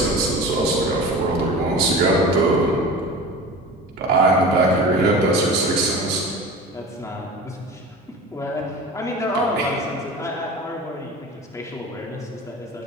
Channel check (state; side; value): normal; both; correlation 0.35